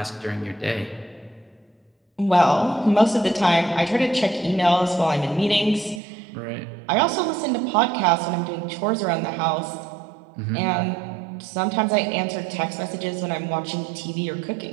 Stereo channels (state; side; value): drops out; left; at 6.0 s